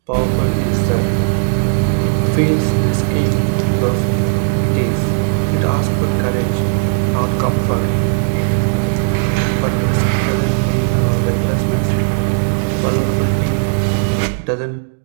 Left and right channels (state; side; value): silent; left; 69 dB below the other